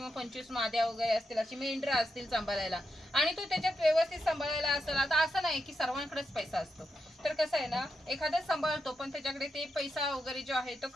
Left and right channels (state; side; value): normal; both; correlation 0.85